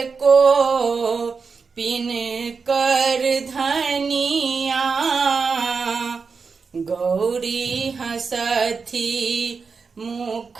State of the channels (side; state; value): left; quieter; 5.1 dB